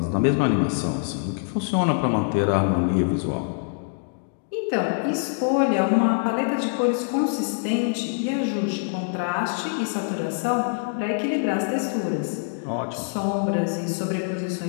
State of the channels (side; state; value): right; silent; digital silence